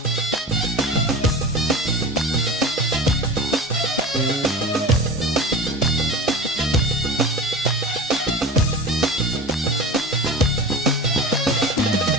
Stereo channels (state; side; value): normal; both; correlation 0.32